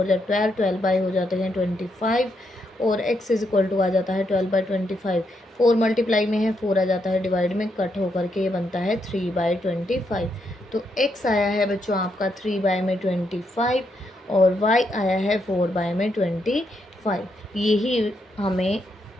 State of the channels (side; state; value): both; normal; correlation 0.79